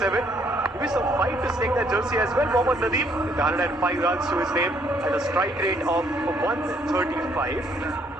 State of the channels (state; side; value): normal; both; correlation 0.67